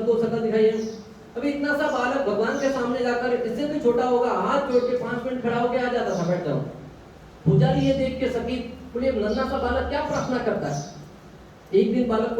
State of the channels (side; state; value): both; identical; correlation 1.00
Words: शकल दिखाइए। अभी इतना सा बालक भगवान के सामने जाकर, इससे भी छोटा होगा, हाथ जोड़ के 5 मिनट खड़ा होके आ जाता था, बैठ जाओ। पुजारी ये देख के सकी, बोले नन्हा सा बालक क्या प्रार्थना करता है? एक दिन बालक